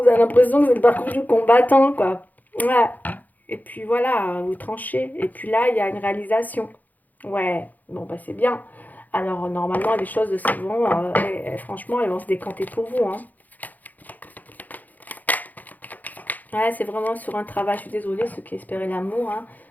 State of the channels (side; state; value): right; late; 0.082 ms